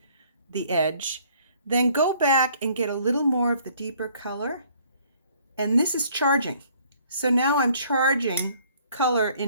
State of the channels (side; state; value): both; inverted; correlation -0.60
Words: the edge, then go back and get a little more of the deeper color. And this is charging. So now I'm charging color